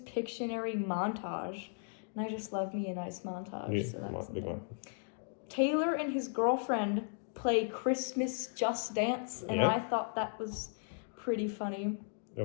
montage, and I just love me a nice montage. Yeah, So that was in big there. one. Taylor and his girlfriend play Christmas Just Dance, and Yeah. I thought that was pretty funny.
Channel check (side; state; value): right; silent; digital silence